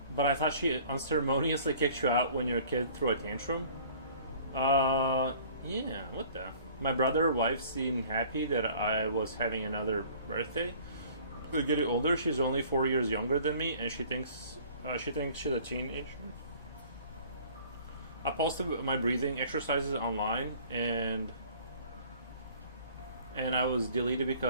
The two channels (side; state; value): both; inverted; correlation -0.51